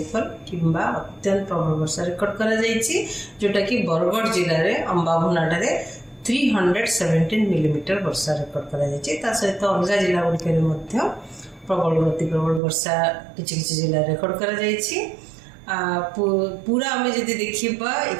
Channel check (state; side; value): drops out; left; at 12.6 s